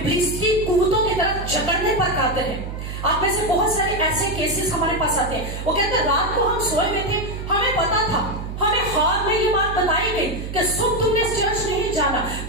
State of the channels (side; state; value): right; noise; hum, 7 dB below the sound